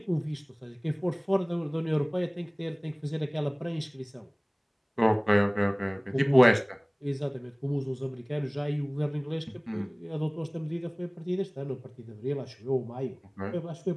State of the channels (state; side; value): identical; both; correlation 1.00